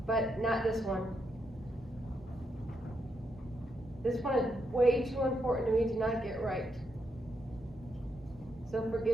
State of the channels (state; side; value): normal; both; correlation 0.81